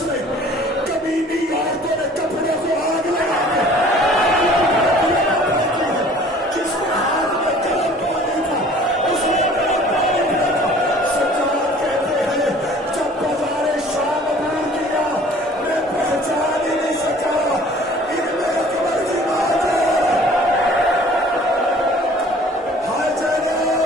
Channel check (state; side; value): normal; both; correlation 0.51